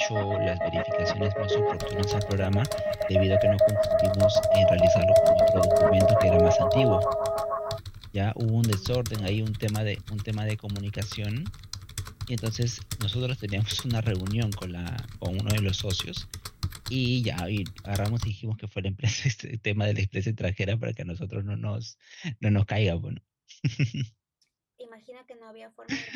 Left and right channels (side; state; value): both; identical; correlation 1.00